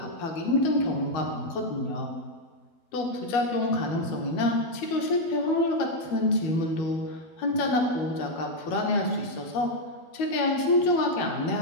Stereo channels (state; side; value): late; right; 12 ms